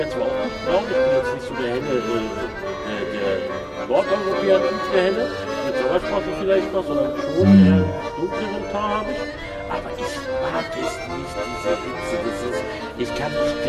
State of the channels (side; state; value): both; identical; correlation 1.00